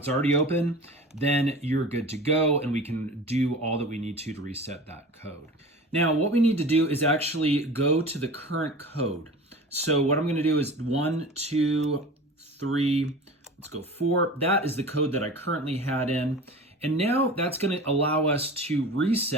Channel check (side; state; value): both; normal; correlation 0.36